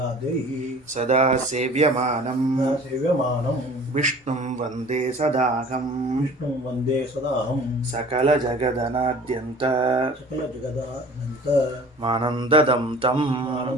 ಸದಾ ಸೇವ್ಯಮಾನಂ ವಿಷ್ಣುಂ ವಂದೇ ಸದಾಹಂ ಸಕಲ ಜಗದನಾದ್ಯಂತ ಮಾನಂದದಂ ತಂ.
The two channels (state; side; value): normal; both; correlation 0.45